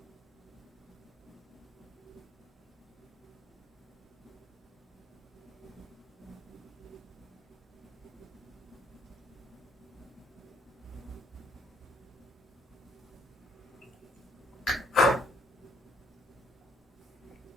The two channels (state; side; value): normal; both; correlation 0.67